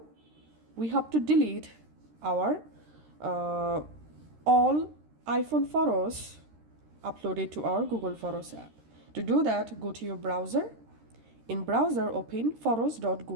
we have to delete our all iPhone photos uploaded to our Google Photos app. To do that, go to your browser. In browser, open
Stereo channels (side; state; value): left; late; 13 ms